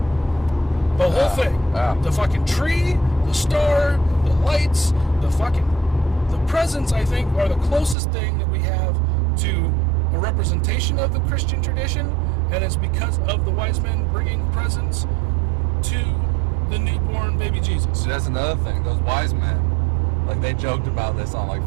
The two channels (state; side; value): drops out; left; at 8.0 s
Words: The whole thing. The fucking tree, the star, the lights, the presents, I think, are the closest thing that we have to a representation of the Christian tradition, and it's because of the wise men bringing presents to the newborn baby Jesus. See, that's another thing. Those wise men, like, they joked about this on, like,